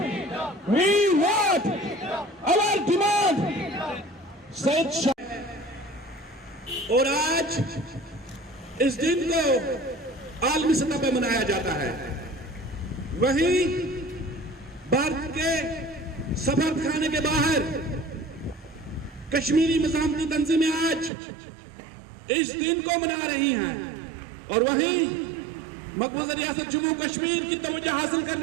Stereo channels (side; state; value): left; drops out; at 21.1 s